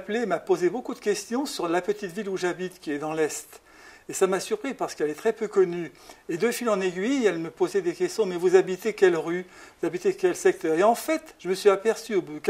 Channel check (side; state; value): both; identical; correlation 1.00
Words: m'a posé beaucoup de questions sur la petite ville où j'habite, qui est dans l'Est. Et ça m'a surpris parce qu'elle est très peu connue. Et de fil en aiguille, elle me posait des questions. Mais vous habitez quelle rue? Vous habitez quel secteur? Et en fait, je me suis aperçu au bout de